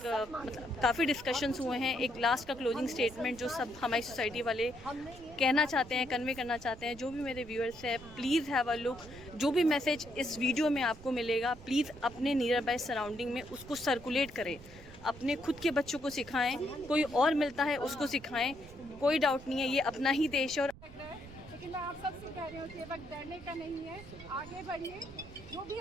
काफ़ी डिस्कशंस हुए हैं। एक लास्ट का क्लोजिंग स्टेटमेंट जो सब हमारी सोसाइटी वाले कहना चाहते हैं, कन्वे करना चाहते हैं। जो भी मेरे व्यूअर्स हैं, प्लीज़ हैव अ लुक। जो भी मैसेज इस वीडियो में आपको मिलेगा, प्लीज़ अपने नियर बाय सराउंडिंग में उसको सर्कुलेट करें, अपने खुद के बच्चों को सिखाएं, कोई और मिलता है उसको सिखाएं। कोई डाउट नहीं है, ये अपना ही देश है। और लेकिन मैं आप सबसे कह रही हूँ कि वक्त डरने का नहीं है, आगे बढ़िए। जो भी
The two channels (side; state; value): right; noise; rumble, 18 dB below the sound